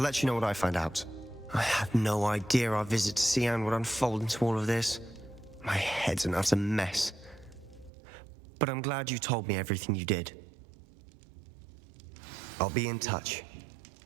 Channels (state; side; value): drops out; left; at 7.9 s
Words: let you know what I find out. I had no idea our visit to Cian would unfold into all of this. My head's an utter mess. But I'm glad you told me everything you did. I'll be in touch.